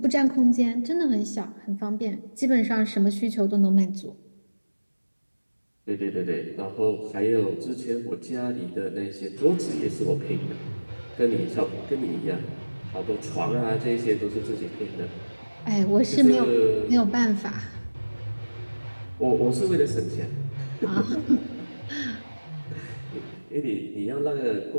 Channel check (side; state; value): both; inverted; correlation -1.00